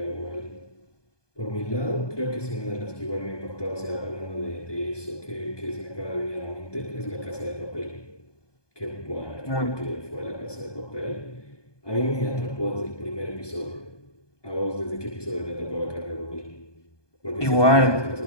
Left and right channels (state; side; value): late; right; 1.2 ms